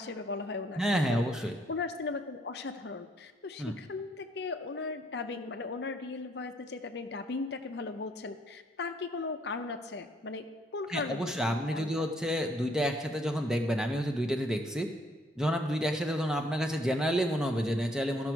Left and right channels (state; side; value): normal; both; correlation 0.67